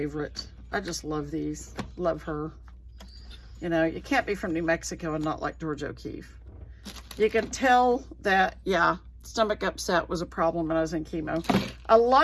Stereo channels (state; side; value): identical; both; correlation 1.00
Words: I just love these. Love her. You know, you can't be from New Mexico and not like George O'Keeffe. You can tell that, yeah, stomach upset was a problem when I was in chemo. A